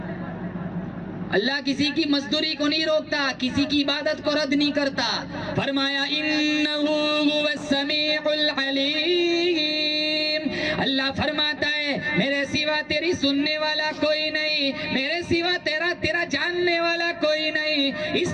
اللہ کسی کی مزدوری کو نہیں روکتا, کسی کی عبادت کو رد نہیں کرتا. فرمایا انہو هو السمیع العلیم. اللہ فرماتا ہے میرے سوا تیری سننے والا کوئی نہیں, میرے سوا تیرا جاننے والا کوئی نہیں, اس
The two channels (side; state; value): both; identical; correlation 1.00